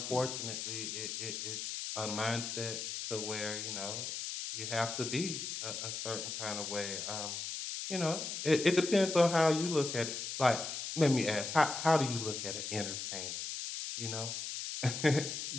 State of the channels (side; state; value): left; noise; hiss, 5 dB below the sound